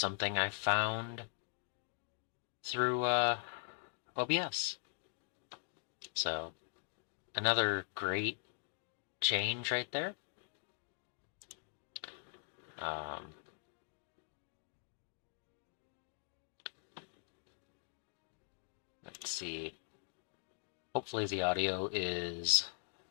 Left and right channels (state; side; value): silent; right; digital silence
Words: I found through OBS. So, another great change right there. Let's see. Hopefully the audio is